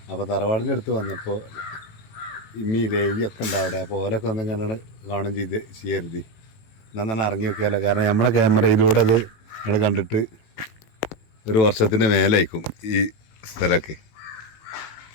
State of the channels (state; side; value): late; right; 18 ms